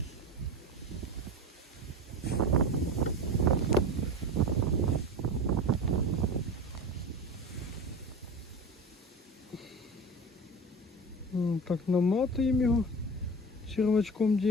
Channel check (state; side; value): normal; both; correlation 0.31